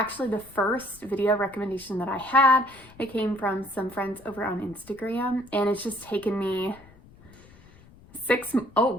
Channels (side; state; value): left; noise; rumble, 24 dB below the sound